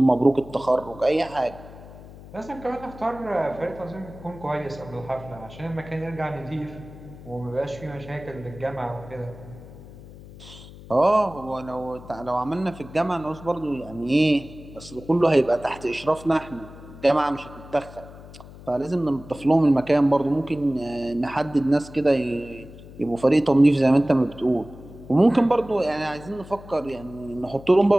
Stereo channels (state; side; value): noise; left; hum, 17 dB below the sound